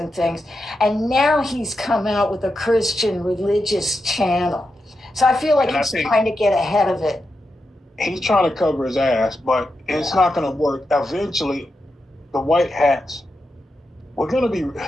things. And now he's come out with a Christian religious channel. So I feel like he's trying to get ahead of it. He's trying to cover his ass, but it's not going to work. Eventually, the White Hats, we're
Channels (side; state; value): both; normal; correlation 0.87